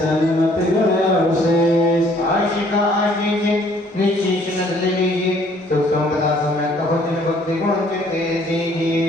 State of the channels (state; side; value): normal; both; correlation 0.61